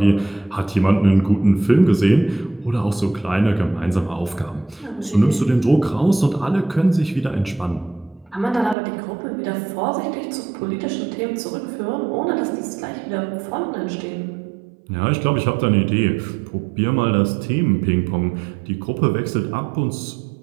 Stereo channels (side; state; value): left; drops out; at 8.8 s